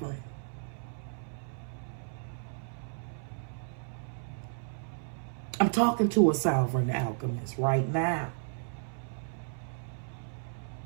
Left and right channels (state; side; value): silent; left; 56 dB below the other